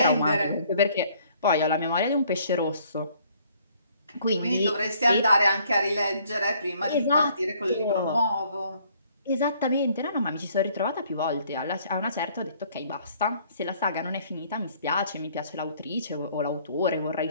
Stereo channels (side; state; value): both; inverted; correlation -0.62